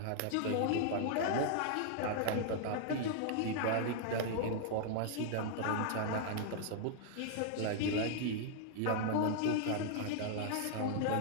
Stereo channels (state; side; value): different; both; correlation -0.01